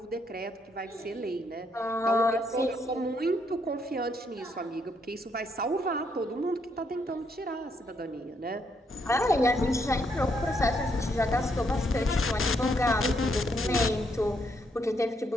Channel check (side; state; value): both; normal; correlation 0.74